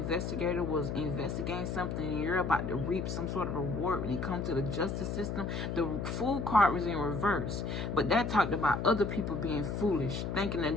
was investigating something and you're about to reap some sort of reward when it comes to the justice system. The Fool card was in reverse, but that talked about other people being foolish, thinking that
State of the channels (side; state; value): left; noise; hum, 3 dB below the sound